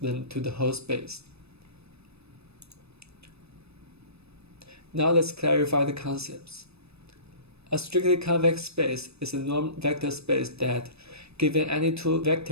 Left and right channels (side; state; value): left; late; 0.79 ms